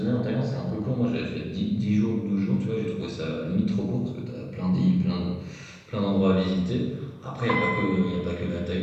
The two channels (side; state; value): both; identical; correlation 1.00